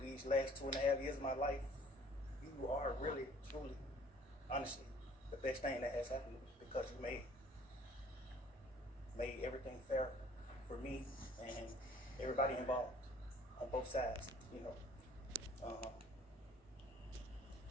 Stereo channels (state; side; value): normal; both; correlation 0.54